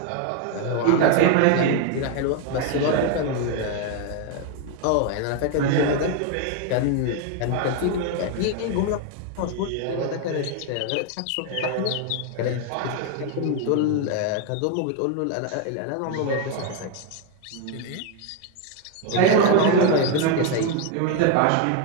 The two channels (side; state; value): both; different; correlation 0.01